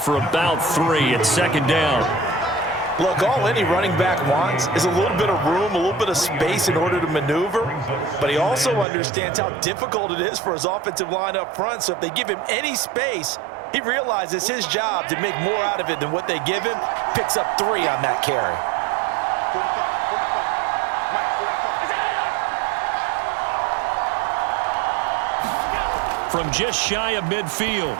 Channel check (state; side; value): drops out; left; at 8.8 s